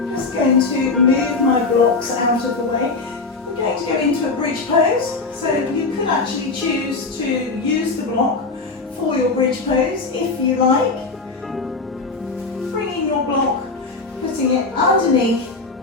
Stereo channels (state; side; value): quieter; right; 3.9 dB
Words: Just going to move my blocks out of the way. We're going to go into a bridge pose. So you could actually choose to use the block for your bridge pose if you like. Bringing your block, putting it underneath